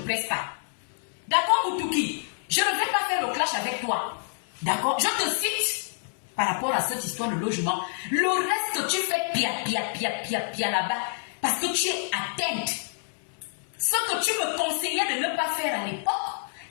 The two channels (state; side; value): silent; right; 60 dB below the other